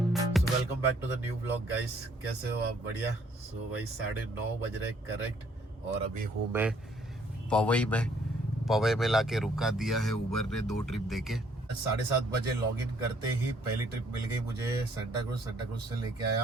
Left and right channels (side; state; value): both; normal; correlation 0.64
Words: welcome back to the new blog guys. कैसे हो आप? बढ़िया। सो भाई 9:30 बज रहे करेक्ट, और अभी हूँ मैं पवई में लाके रुका दिया है उबर ने 2 ट्रिप देके। 7:30 बजे लॉग इन करते ही पहली ट्रिप मिल गई मुझे सेंटा क्रूज से लेके